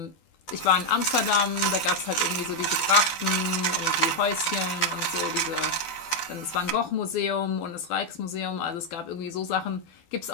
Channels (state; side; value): late; right; 12 ms